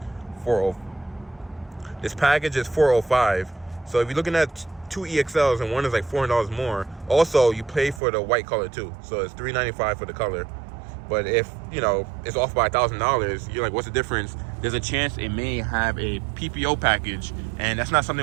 $405. So if you're looking at 2 EXLs and one is like $400 more. Also, you pay for the white color too. So it's $395 for the color. But if, you know, it's off by $1,000, you're like, what's the difference? There's a chance it may have a PPO package, and that's not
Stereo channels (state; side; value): drops out; left; at 8.0 s